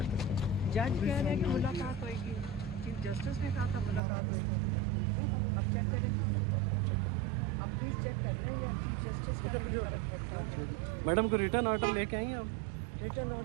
जज कह रहे हैं कि मुलाकात होएगी, चीफ जस्टिस ने कहा था मुलाकात होएगी, अब चेक करें। अब प्लीज चेक कर रहे हैं या चीफ जस्टिस का भी फर्क पड़ता है। मैडम को रिटर्न ऑर्डर लेके आई हैं आप? रिटर्न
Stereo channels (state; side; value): drops out; left; at 4.0 s